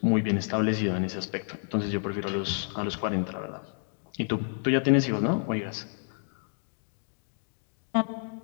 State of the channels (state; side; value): silent; right; 58 dB below the other